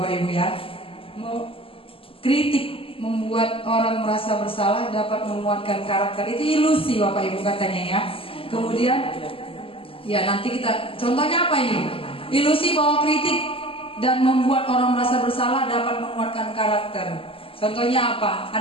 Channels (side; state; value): right; late; 0.26 ms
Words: Ibu ya. Kritik membuat orang merasa bersalah dapat menguatkan karakter. Itu ilusi Bapak Ibu katanya ya. Kemudian ya nanti kita contohnya apa ini? Ilusi bahwa kritik dan membuat orang merasa bersalah dapat menguatkan karakter. Contohnya apa?